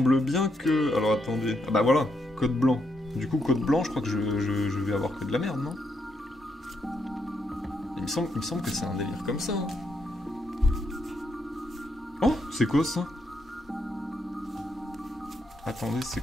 bien que... Alors attendez... Ah bah voilà, code blanc. Du coup, code blanc, je crois que je vais avoir que de la merde, non? Il me semble que c'est un délire comme ça. Hein. Oh, c'est quoi ça? Attendez, c'est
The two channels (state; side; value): normal; both; correlation 0.79